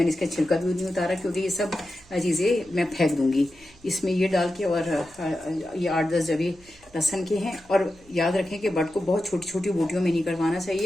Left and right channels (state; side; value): noise; right; hum, 27 dB below the sound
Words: इसका छिलका भी नहीं उतारा क्योंकि ये सब चीज़ें मैं फेंक दूंगी। इसमें ये डाल के, और ये 8-10 जबे लहसन के हैं। और याद रखें कि बट को बहुत छोटी छोटी बोटियों में नहीं करवाना